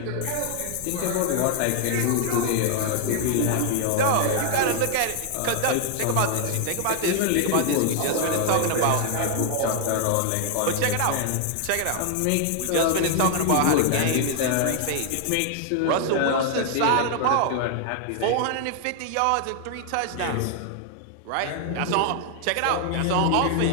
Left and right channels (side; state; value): both; different; correlation 0.00